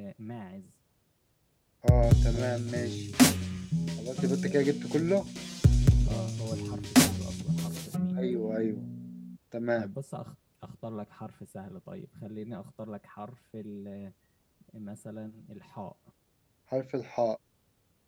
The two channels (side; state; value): both; identical; correlation 1.00